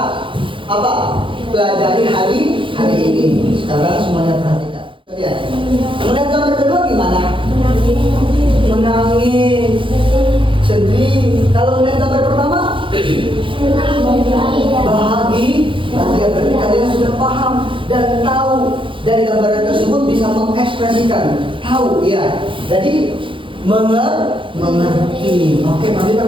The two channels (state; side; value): late; left; 0.25 ms